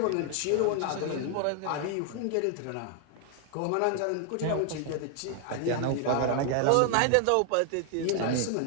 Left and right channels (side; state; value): both; different; correlation 0.00